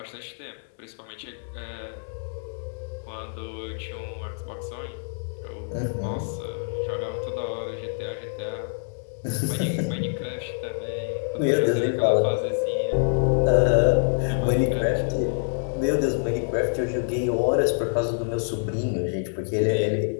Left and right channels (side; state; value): right; silent; 60 dB below the other